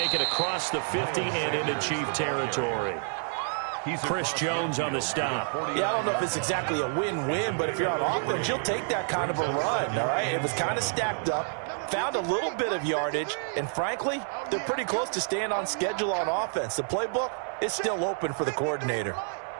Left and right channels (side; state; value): left; silent; 59 dB below the other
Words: it across the 50 and into Chief territory. Chris Jones on the stop. Yeah, I don't know if it's exactly a win-win, but if you're on offense, you'll take that kind of a run, all right? It was kind of stacked up, found a little bit of yardage, and frankly, they're pretty close to staying on schedule on offense. The playbook is still open for the coordinator.